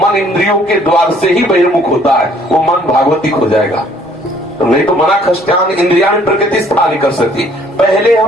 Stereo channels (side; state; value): both; normal; correlation 0.60